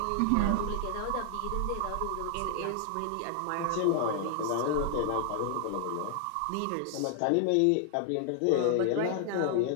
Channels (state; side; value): different; both; correlation 0.00